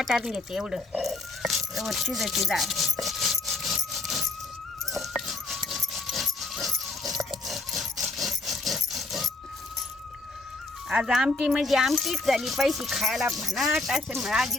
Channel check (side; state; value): right; quieter; 3.1 dB